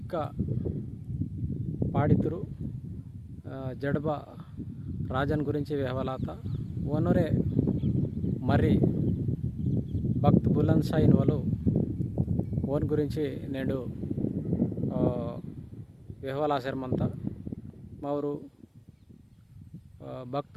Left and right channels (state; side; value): identical; both; correlation 1.00